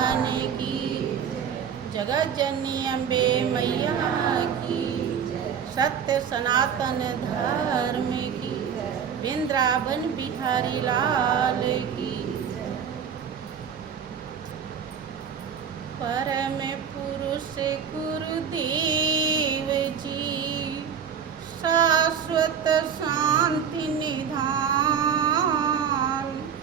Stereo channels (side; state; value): left; quieter; 7.6 dB